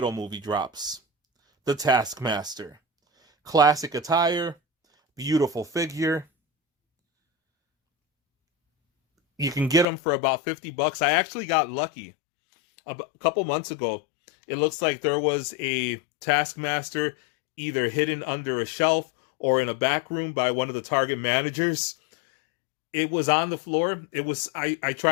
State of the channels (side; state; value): right; drops out; at 9.9 s